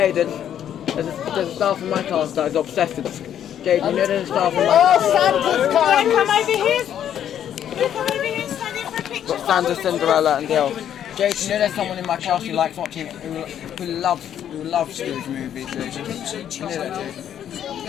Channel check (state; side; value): quieter; right; 10.0 dB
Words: there's a staff in my class that is obsessed with Jaden, you know there's a staff in my Oh, class. Santa's come! Come over here. Come over here and stand in for a picture. Got Santa, Cinderella and the elf. Jaden, you know there's someone in my class who likes watching, who loves Scrooge movies, Jaden. You know that,